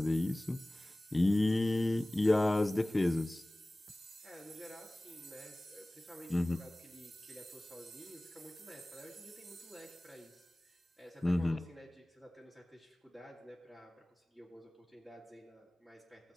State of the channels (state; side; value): normal; both; correlation 0.98